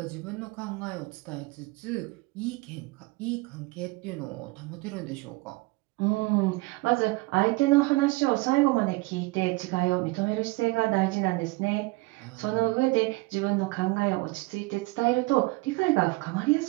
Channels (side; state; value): left; quieter; 23.1 dB